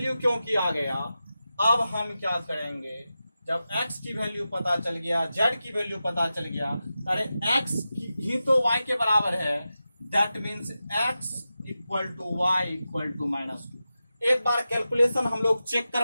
क्योंकि आ गया, अब हम क्या करेंगे, जब x की वैल्यू पता चल गया, z की वैल्यू पता चल गया, अरे x ही तो y के बराबर है, that means x equal to y equal to minus 2। एक बार कैलकुलेशन हम लोग चेक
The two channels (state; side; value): inverted; both; correlation -0.92